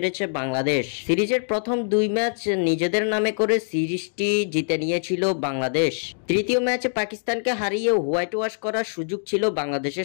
বাংলাদেশ। সিরিজের প্রথম ২ ম্যাচ নিজেদের নামে করে সিরিজটি জিতে নিয়েছিল বাংলাদেশ। তৃতীয় ম্যাচে পাকিস্তানকে হারিয়ে হোয়াইট ওয়াশ করার সুযোগ ছিল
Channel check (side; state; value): right; silent; digital silence